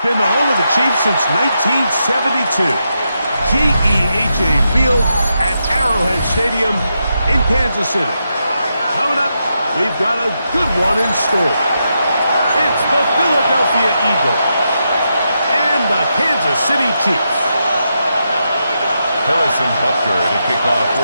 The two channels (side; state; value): both; inverted; correlation -0.84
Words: been the home of the Chiefs since 1972. GEHA Field at Arrowhead Stadium in Kansas City. Coming up, we've got a good one in store. It's the Philadelphia Eagles and the Kansas City Chiefs. Harrison Butker to kick off